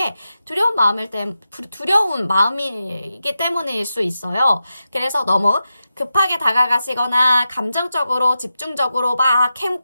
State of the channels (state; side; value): inverted; both; correlation -0.90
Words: 두려운 마음이기 때문일 수 있어요. 그래서 너무 급하게 다가가시거나 감정적으로 집중적으로 막